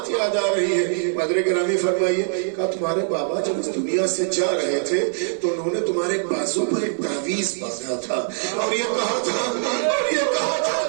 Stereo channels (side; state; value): left; silent; 58 dB below the other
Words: یاد آ رہی ہے، مدر گرامی فرمائیے، کہا تمہارے بابا جب اس دنیا سے جا رہے تھے تو انہوں نے تمہارے بازو پر ایک تعویذ باندھا تھا اور یہ کہا تھا